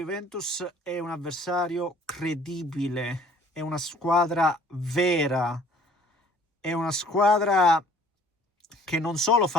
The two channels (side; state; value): both; normal; correlation 0.55